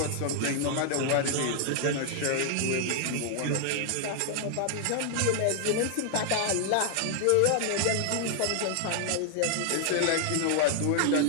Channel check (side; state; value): both; different; correlation 0.00